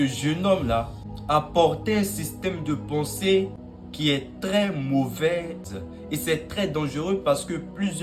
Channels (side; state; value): both; identical; correlation 1.00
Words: jeune homme-là apportait un système de pensée qui est très mauvais et c'est très dangereux parce que